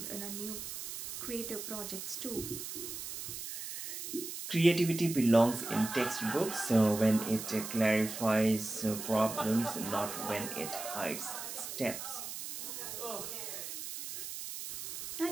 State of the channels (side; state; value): right; noise; hiss, 7 dB below the sound